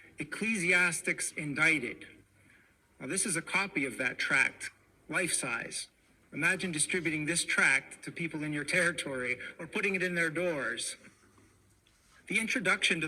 Ecclesiastics Indicted. Now, this is a copy of that tract, life-size. Imagine distributing this tract to people in your territory or putting it in their doors. The introduction to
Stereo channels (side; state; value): both; identical; correlation 1.00